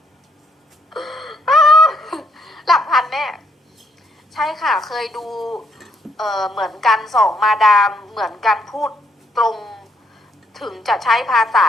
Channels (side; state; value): both; normal; correlation 0.71